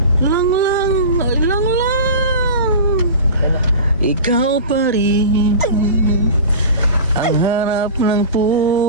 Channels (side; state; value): both; inverted; correlation -0.32